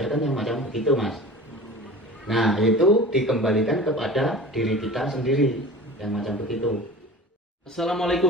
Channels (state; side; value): normal; both; correlation 0.38